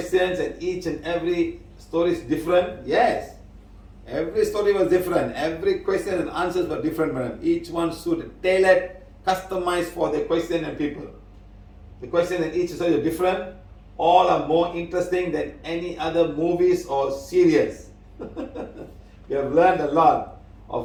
and each and every story is different. Yes. Every story was different. Every question and answers were different, madam. Each one suited, tailored, customized for the question and people. The question and each story are different. All are more interesting than any other movies or series. We have learned a lot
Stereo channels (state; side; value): identical; both; correlation 1.00